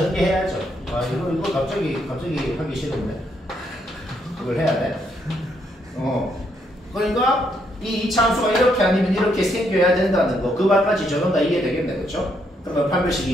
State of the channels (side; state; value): both; normal; correlation 0.75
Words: 이거 갑자기 하기 싫은데 이걸 해야 돼. 그러니까 이 2차 함수가 이렇게 아니면 이렇게 생겨야 된다는 거, 그 말까지 저는 다 이해되겠네, 그렇죠? 그러면